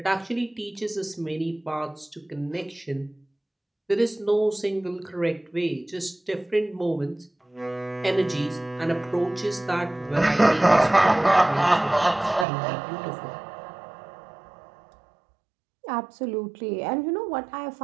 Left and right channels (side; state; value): left; drops out; at 12.5 s